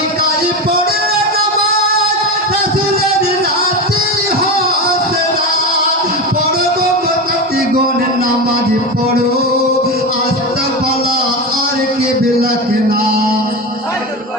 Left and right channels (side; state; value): both; normal; correlation 0.20